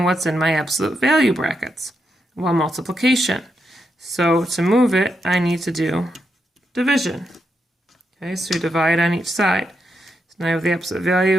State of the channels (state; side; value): normal; both; correlation 0.83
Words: what's in my absolute value brackets? Well, multiplication. So to move it, I need to do division. Okay, so you divide on each side. So now I have the absolute